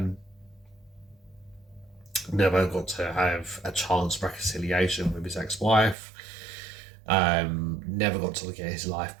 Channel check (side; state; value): left; drops out; at 6.0 s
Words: Never got to have a chance reconciliation with his ex-wife. Never got to get his life